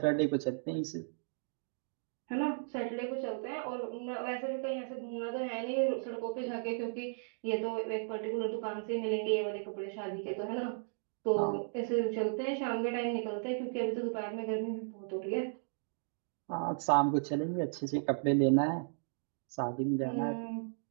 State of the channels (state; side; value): silent; left; digital silence